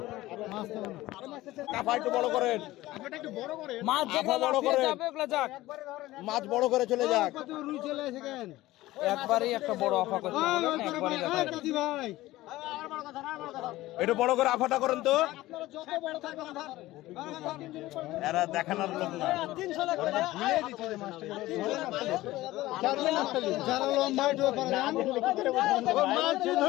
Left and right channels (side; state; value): right; quieter; 17.2 dB